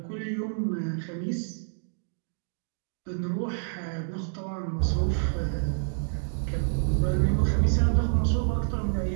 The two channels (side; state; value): left; silent; digital silence